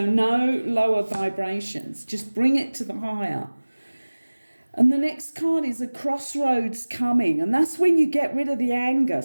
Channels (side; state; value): both; inverted; correlation -1.00